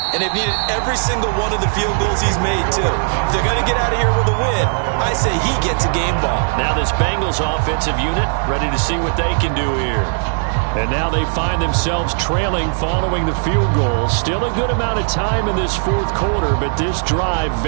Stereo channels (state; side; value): silent; left; digital silence